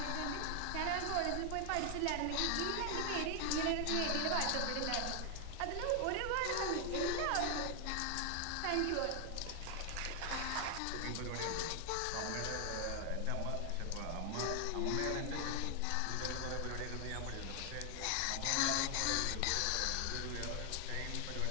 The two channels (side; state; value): both; different; correlation 0.00